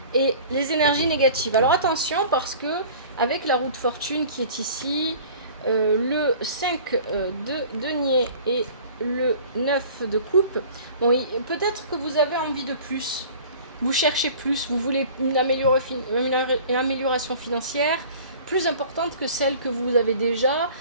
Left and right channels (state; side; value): inverted; both; correlation -0.45